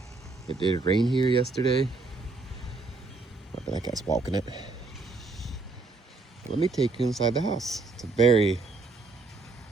It did rain here yesterday. That guy's walking it. Let me take you inside the house. It's a very,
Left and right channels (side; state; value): left; quieter; 3.7 dB